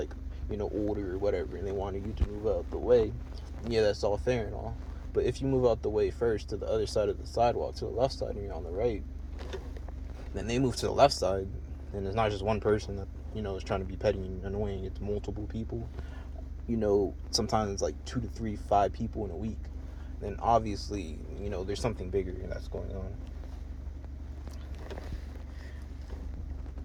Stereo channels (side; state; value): both; identical; correlation 1.00